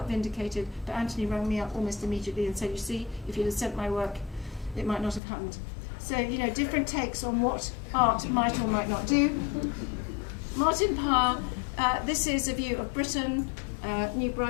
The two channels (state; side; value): drops out; right; at 5.2 s